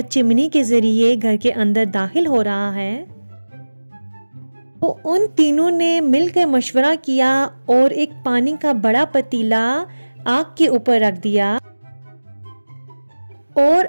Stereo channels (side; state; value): both; inverted; correlation -1.00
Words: चिमनी के जरिए घर के अंदर दाखिल हो रहा है तो उन तीनों ने मिलकर मशवरा किया और एक पानी का बड़ा पतीला आग के ऊपर रख दिया और